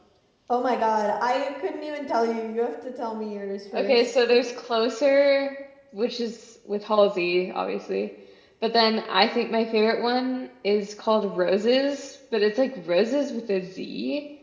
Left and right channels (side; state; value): both; identical; correlation 1.00